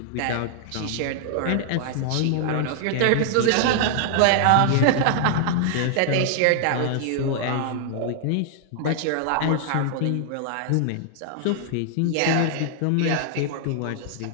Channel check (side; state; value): both; different; correlation -0.01